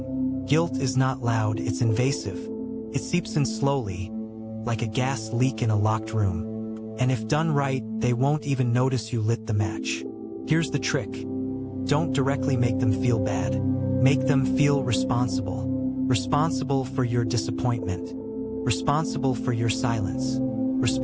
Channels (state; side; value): identical; both; correlation 1.00